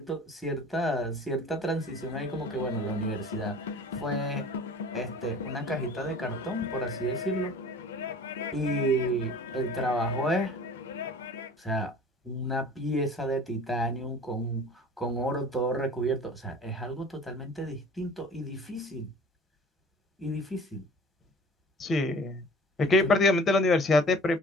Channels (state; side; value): normal; both; correlation 0.45